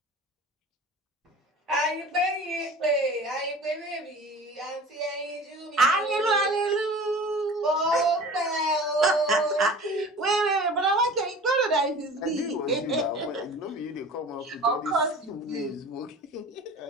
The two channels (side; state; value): both; normal; correlation 0.41